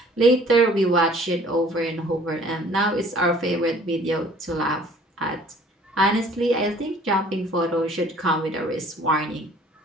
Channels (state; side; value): normal; both; correlation 0.54